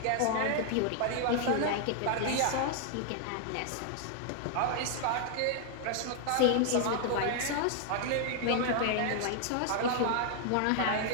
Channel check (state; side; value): different; both; correlation 0.00